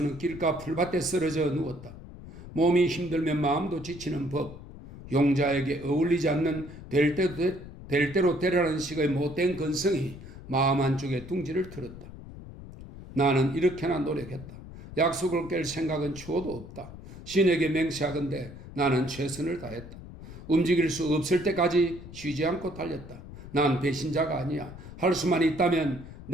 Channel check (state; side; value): noise; left; rumble, 14 dB below the sound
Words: 길가 풀밭에 쓰러져 누웠다. 몸이 힘들면 마음도 지치는 법. 용자에게 어울리지 않는 될 대로 되라는 식의 못된 근성이 마음 한쪽에 둥지를 틀었다. 나는 이렇게나 노력했다. 약속을 깰 생각은 추호도 없다. 신에게 맹세하건대 나는 최선을 다했다. 움직일 수 없을 때까지 쉬지 않고 달렸다. 난 배신자가 아니야. 할 수만 있다면